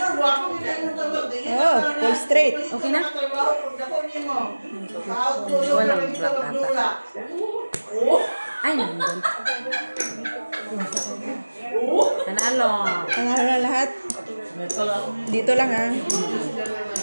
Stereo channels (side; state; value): both; inverted; correlation -1.00